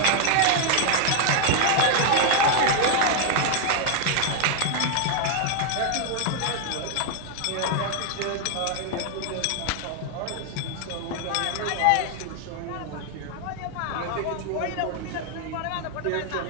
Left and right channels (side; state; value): both; different; correlation 0.00